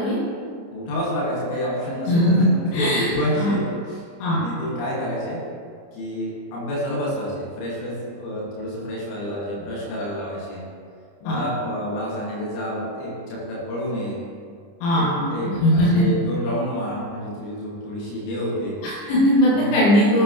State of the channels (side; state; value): right; late; 30 ms